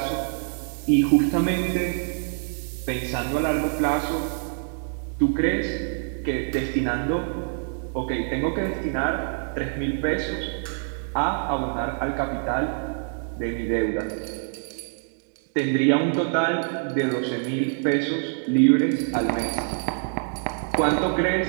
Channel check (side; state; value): left; silent; 61 dB below the other